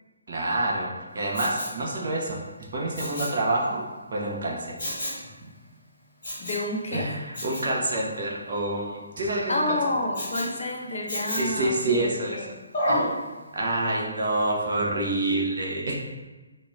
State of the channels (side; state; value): both; inverted; correlation -0.61